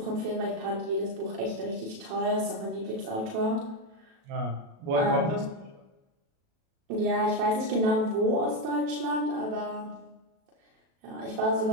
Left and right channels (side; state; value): left; late; 37 ms